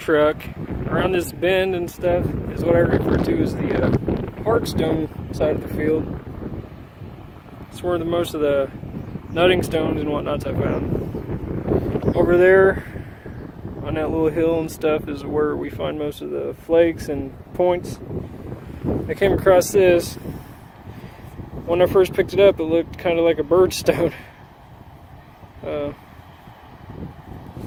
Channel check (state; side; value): identical; both; correlation 1.00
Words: Around this bend and stuff is what I refer to as the hardstone side of the field. It's where most of the nutting stones and whatnots I found. Over there on that little hill and stuff is where we find most of the flakes and points. I came across this. When I first picked it up, it looked kind of like a birdstone.